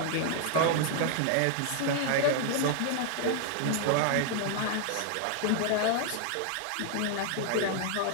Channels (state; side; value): different; both; correlation 0.00